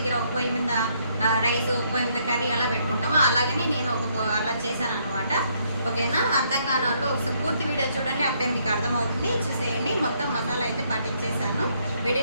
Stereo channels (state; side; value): inverted; both; correlation -0.70